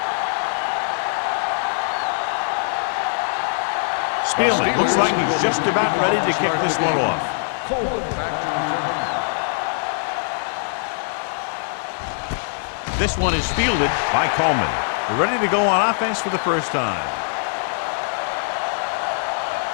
Spielman looks like he's just about ready to kick this one off. This one is fielded by Coleman. They're ready to go on offense for the first time.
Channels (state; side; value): silent; right; digital silence